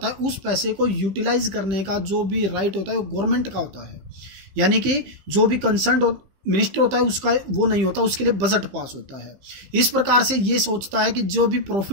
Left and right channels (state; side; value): late; left; 15 ms